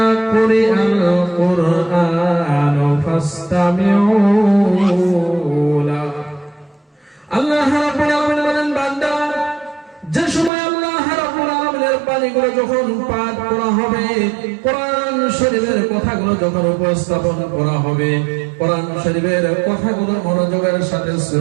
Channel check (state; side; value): drops out; left; at 10.5 s